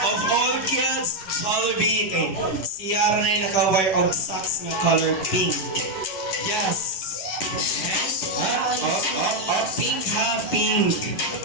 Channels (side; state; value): right; late; 11 ms